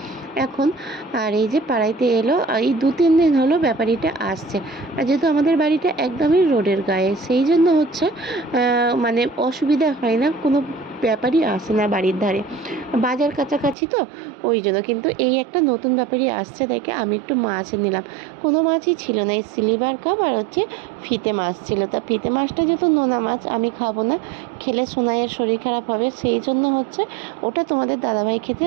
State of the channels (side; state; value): left; drops out; at 13.8 s